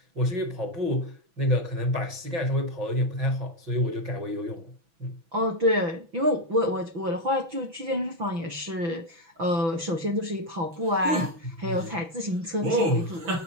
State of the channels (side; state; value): left; late; 6.1 ms